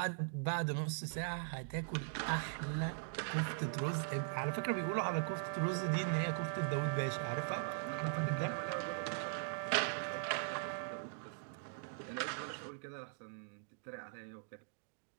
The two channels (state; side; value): silent; left; digital silence